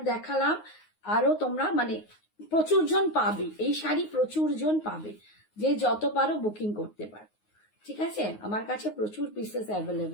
দেখালাম, আরো তোমরা মানে প্রচুর জন পাবে এই শাড়ি, প্রচুর জন পাবে, যে যত পারো বুকিং করতে পারো। ঠিক আছে, আমার কাছে প্রচুর পিসেস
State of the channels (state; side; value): late; right; 9.5 ms